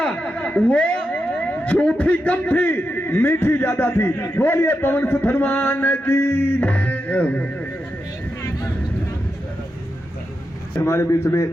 वो झूठी कम थी, मीठी ज्यादा थी। बोलिए पवन सुत हनुमान की। हमारे बीच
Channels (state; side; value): normal; both; correlation 0.87